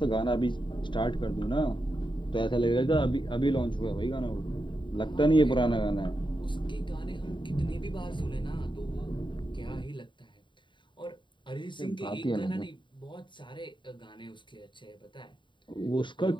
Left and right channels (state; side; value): late; right; 0.23 ms